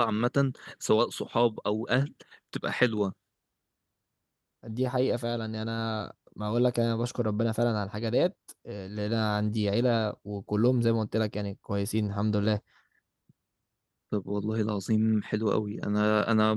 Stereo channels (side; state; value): both; identical; correlation 1.00